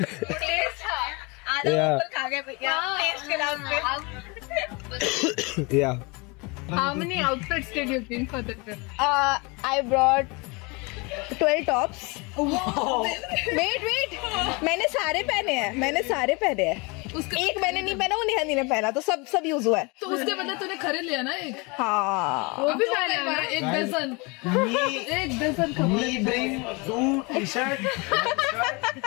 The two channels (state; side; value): quieter; right; 28.5 dB